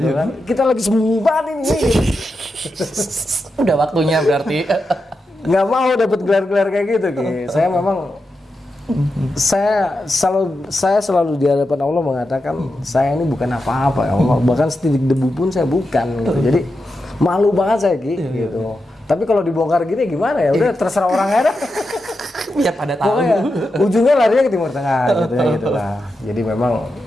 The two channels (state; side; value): normal; both; correlation 0.88